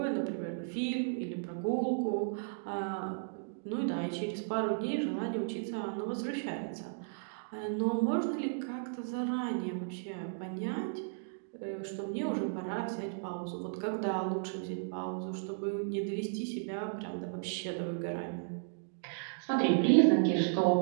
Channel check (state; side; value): silent; left; digital silence